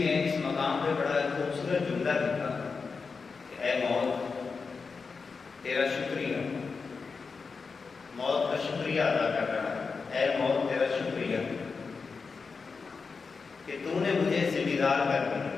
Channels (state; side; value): quieter; right; 4.9 dB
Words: اس مقام پہ بڑا خوبصورت جملہ لکھا کہ اے موت تیرا شکریہ، موت کا شکریہ ادا کر رہا ہے، اے موت تیرا شکریہ کہ تو نے مجھے ذمہ دار کر دیا،